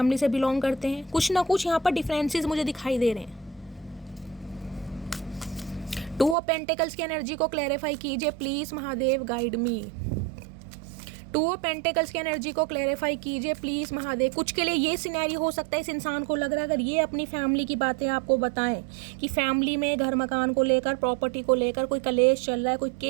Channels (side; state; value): left; drops out; at 6.4 s